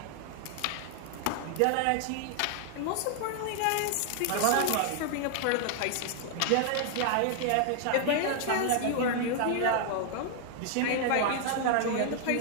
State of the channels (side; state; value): both; different; correlation 0.00